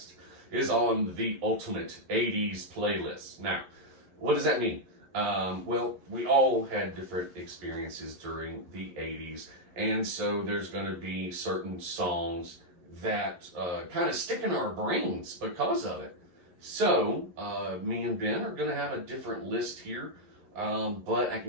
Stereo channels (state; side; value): late; left; 11 ms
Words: is on the ultimate 80's playlist. Now, what does that mean? We all had different experiences during the 80's, and so there's going to be certain songs that kind of stick in our brains because of it. So, me and Ben are going to have a different list here. But I